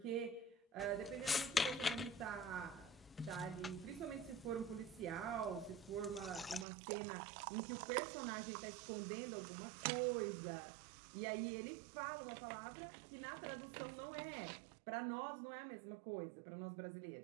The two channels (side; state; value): left; drops out; at 6.7 s